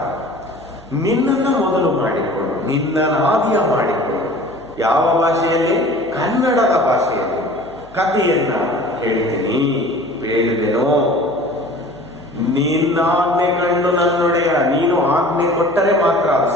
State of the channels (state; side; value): noise; right; hum, 23 dB below the sound